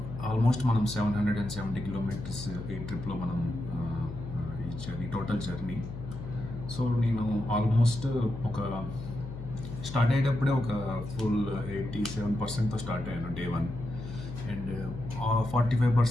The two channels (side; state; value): left; noise; hum, 9 dB below the sound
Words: ఆల్మోస్ట్ మనం 770 కిలోమీటర్స్ ఈ ట్రిప్లో మనం ఈ టోటల్ జర్నీ. సో నేను ఆల్మోస్ట్ ఒక స్టార్ట్ అయ్యేటప్పుడే ఒక ఫుల్ 87%తో స్టార్ట్ అయ్యాను డే 1. అండ్